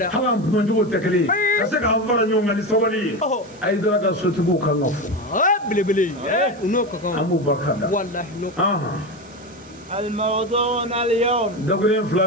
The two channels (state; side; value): noise; right; hiss, 27 dB below the sound